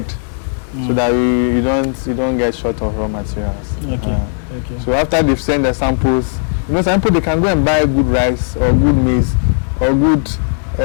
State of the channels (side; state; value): right; silent; digital silence